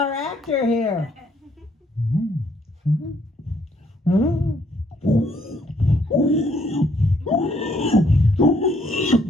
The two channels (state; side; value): normal; both; correlation 0.68